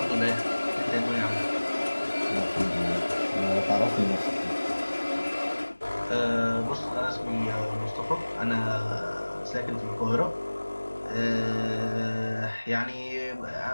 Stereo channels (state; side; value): inverted; both; correlation -1.00